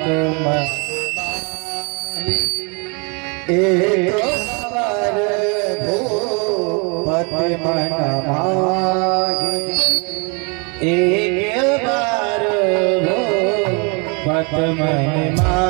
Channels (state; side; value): quieter; left; 33.4 dB